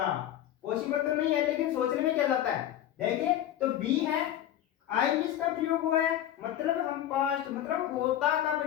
पॉसिबल तो नहीं है, लेकिन सोचने में क्या जाता है। देखिए तो बी है, आई विश का प्रयोग हुआ है, मतलब हम पास्ट मतलब होता का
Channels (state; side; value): quieter; right; 11.9 dB